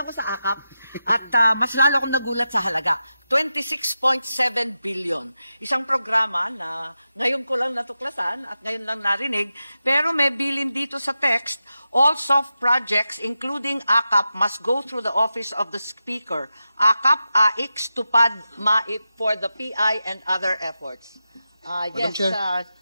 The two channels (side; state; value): both; inverted; correlation -0.91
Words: sa AKAP at mas lalo akong nagulat sa halaga. 26.7 billion. Isang programa na ngayon ko lang natuklasan at ngayon lang narinig, pero may bilin dito sa text, all soft projects including AKAP must go through the office of the Speaker. AKAP, AIX, TUPAD, MAIP for the PI and other efforts. Madam Chair,